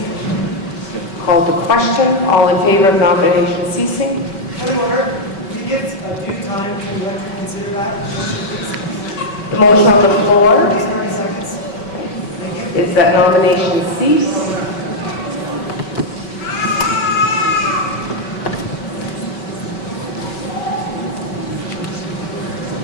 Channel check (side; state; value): right; late; 5.2 ms